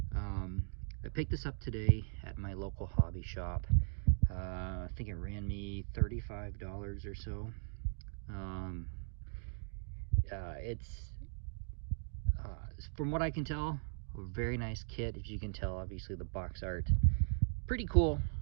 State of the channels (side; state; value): left; silent; digital silence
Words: I picked this up today at my local hobby shop. I think it ran me $35 or so. It's, from what I can tell, a very nice kit. As you can tell, obviously the box art pretty cool,